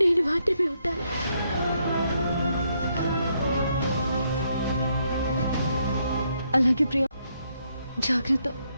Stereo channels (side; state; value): both; inverted; correlation -0.75